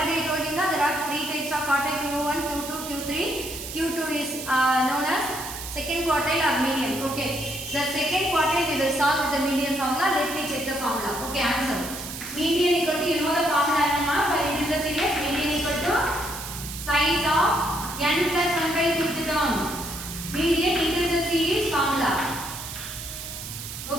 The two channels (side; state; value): right; noise; hiss, 9 dB below the sound